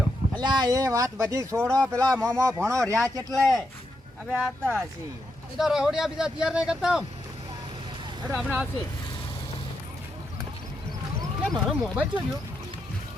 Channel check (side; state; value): both; normal; correlation 0.83